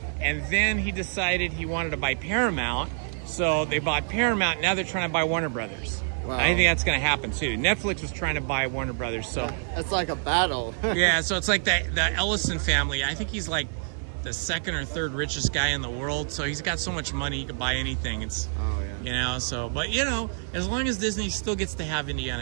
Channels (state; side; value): silent; left; 60 dB below the other